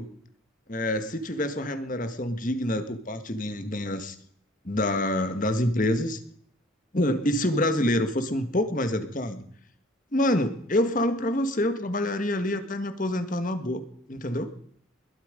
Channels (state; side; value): normal; both; correlation 0.53